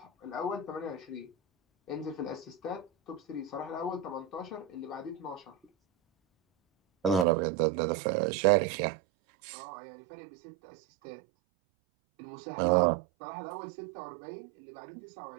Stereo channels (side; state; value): left; drops out; at 7.2 s